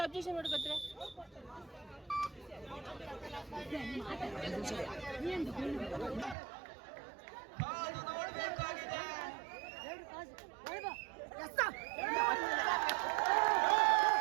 ಅಬ್ಜೆಕ್ಷನ್ ಮಾಡ್ಕೊತ್ರೆ ನೋಡ್ಬೇಕಾಗಿದೆ.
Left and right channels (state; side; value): drops out; left; at 6.4 s